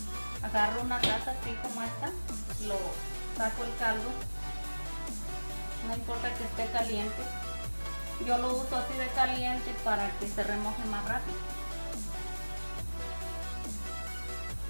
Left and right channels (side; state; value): both; inverted; correlation -1.00